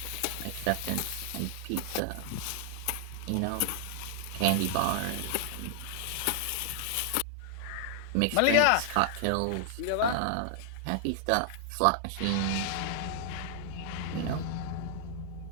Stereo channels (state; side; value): different; both; correlation -0.01